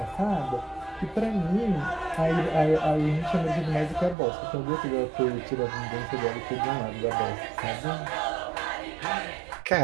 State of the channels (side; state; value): left; drops out; at 4.2 s